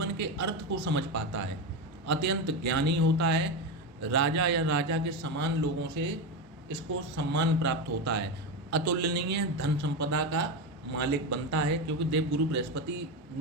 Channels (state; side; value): normal; both; correlation 0.15